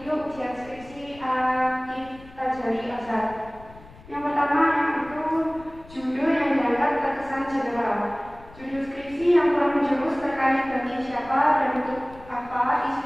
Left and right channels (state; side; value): noise; left; rumble, 21 dB below the sound